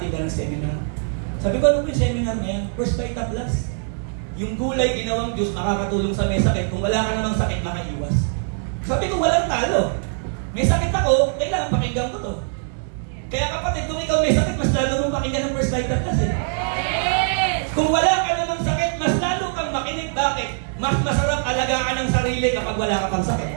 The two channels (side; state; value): left; silent; digital silence